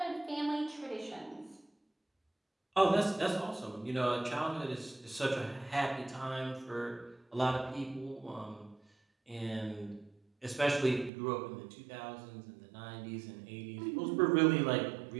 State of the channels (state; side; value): drops out; left; at 11.1 s